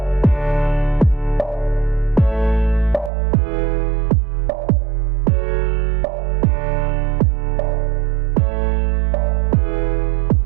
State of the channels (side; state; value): left; drops out; at 3.1 s